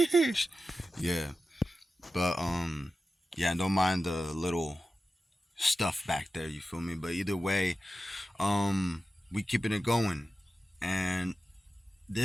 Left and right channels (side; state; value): both; normal; correlation 0.93